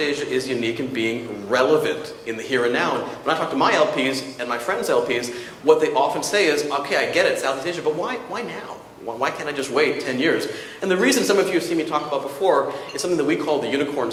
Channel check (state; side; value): identical; both; correlation 1.00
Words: is unique in being relevant in the here and now. And when I talk to my LPs and my friends' LPs, what they often say is, okay, I get it, Southeast Asia, but why now? Why can't I just wait 10 years? And the reason some of you have seen me talk about before is something that we call the unicorn